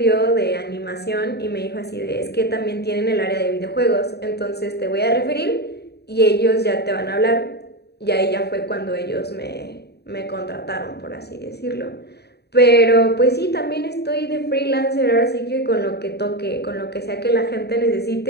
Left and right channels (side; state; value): right; late; 0.48 ms